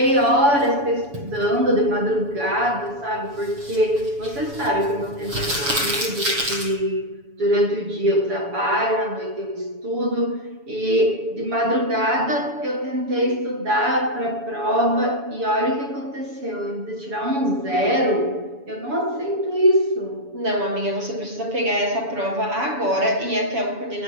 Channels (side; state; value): left; late; 7.0 ms